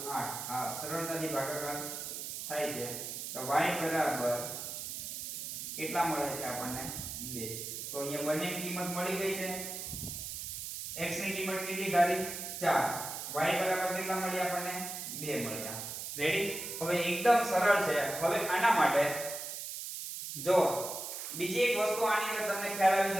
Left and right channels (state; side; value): noise; right; hiss, 6 dB below the sound